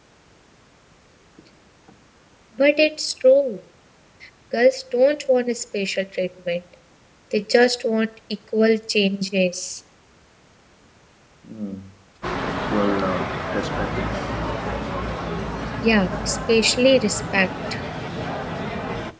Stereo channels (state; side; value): identical; both; correlation 1.00